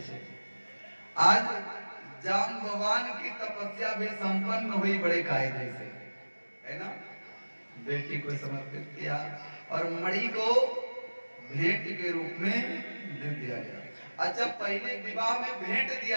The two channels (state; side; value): inverted; both; correlation -1.00